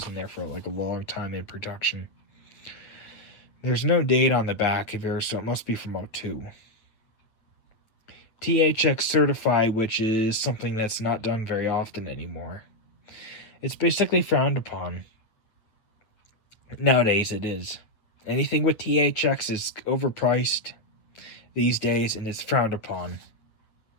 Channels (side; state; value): right; late; 9.2 ms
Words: in there for like a long time in production. There's no date on the back of here, so it must be from '02. THX certified, which is something that's not done very often anymore. It's basically frowned upon. Nowadays it is. Anything with THX is overpriced these days, and it's frowned upon.